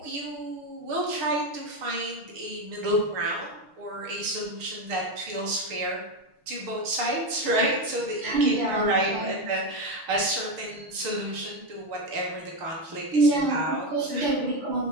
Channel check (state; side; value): late; left; 6.6 ms